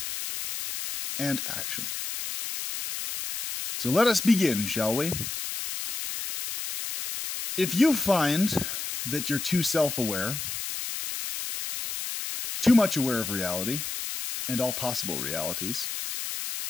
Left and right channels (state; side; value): noise; left; hiss, 5 dB below the sound